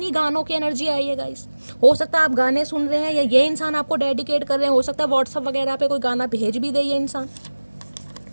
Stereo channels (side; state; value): both; inverted; correlation -1.00